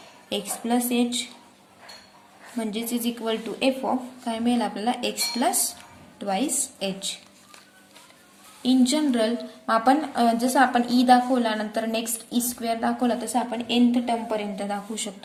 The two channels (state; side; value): identical; both; correlation 1.00